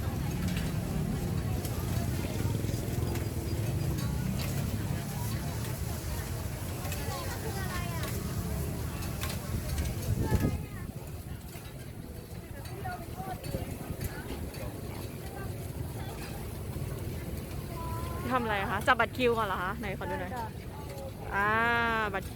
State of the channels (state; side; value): identical; both; correlation 1.00